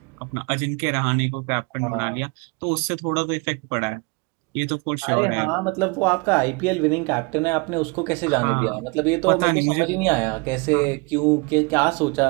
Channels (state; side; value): quieter; left; 29.5 dB